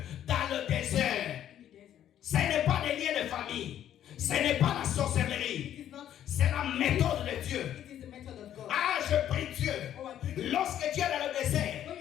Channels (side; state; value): right; quieter; 10.9 dB